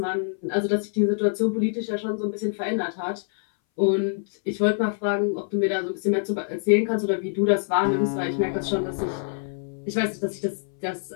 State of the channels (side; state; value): right; silent; 60 dB below the other